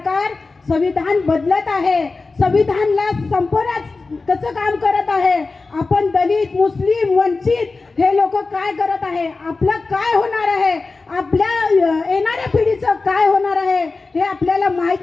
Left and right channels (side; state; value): right; quieter; 3.8 dB